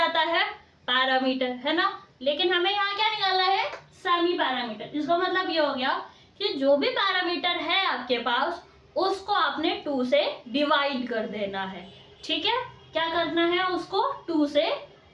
है? पैरामीटर, है ना? लेकिन हमें यहाँ क्या निकालना है? Semi parameter. इसका मतलब ये हो गया कि जो भी पैरामीटर है आपके पास उसको आपने 2 से डिवाइड कर देना है। ठीक है, क्या करना है? उसको 2 से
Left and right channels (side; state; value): both; identical; correlation 1.00